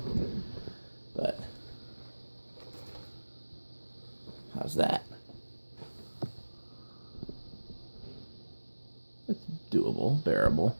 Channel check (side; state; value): both; inverted; correlation -1.00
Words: But how's that? It's doable, bearable.